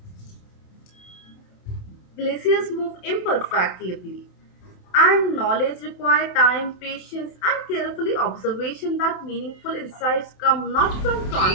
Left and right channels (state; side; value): late; right; 27 ms